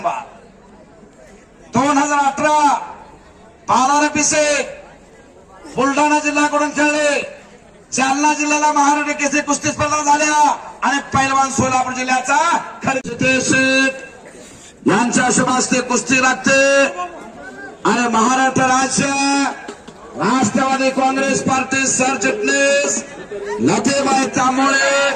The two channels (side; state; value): both; identical; correlation 1.00